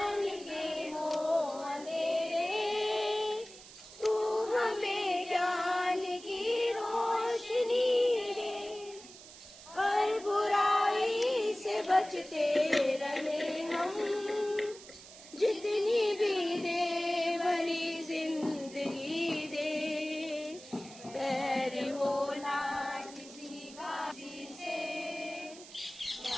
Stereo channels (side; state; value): right; noise; hiss, 17 dB below the sound